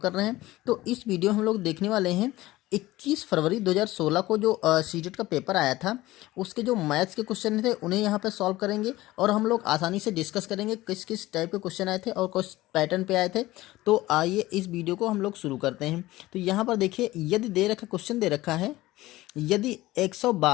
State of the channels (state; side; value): quieter; right; 17.7 dB